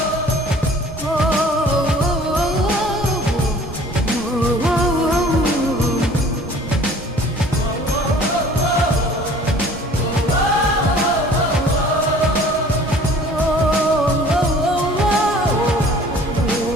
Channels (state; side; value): normal; both; correlation 0.50